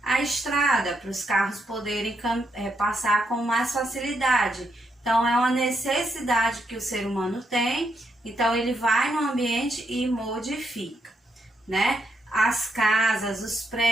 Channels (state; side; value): normal; both; correlation 0.79